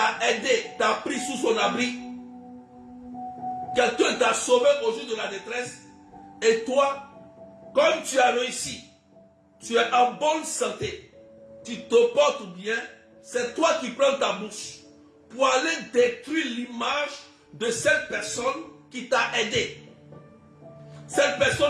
aidé, t'a pris sous son abri. Quelqu'un t'a sauvé au jour de la détresse. Et toi, comme tu as réussi, tu es en bonne santé, tu te portes bien, c'est toi qui prends ta bouche pour aller détruire l'image de cette personne qui t'a aidé. Cette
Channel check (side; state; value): both; identical; correlation 1.00